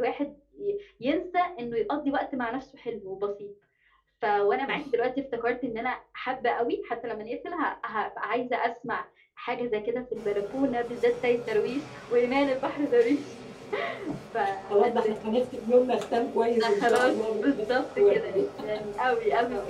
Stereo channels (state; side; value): identical; both; correlation 1.00